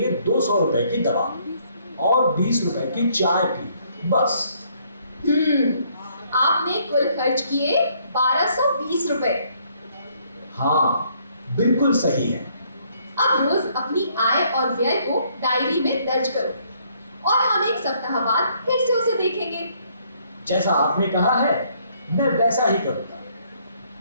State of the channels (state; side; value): inverted; both; correlation -0.67